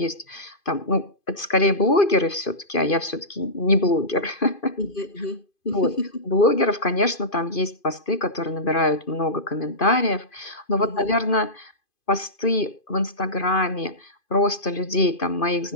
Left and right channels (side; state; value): right; late; 2.5 ms